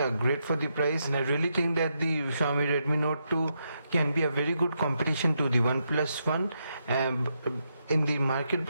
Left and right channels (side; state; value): both; inverted; correlation -0.81